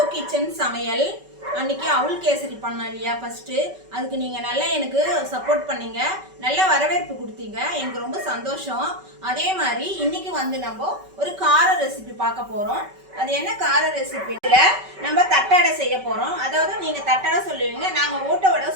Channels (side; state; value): left; late; 5.2 ms